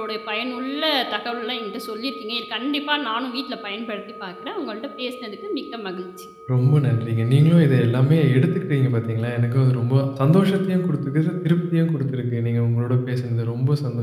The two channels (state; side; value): identical; both; correlation 1.00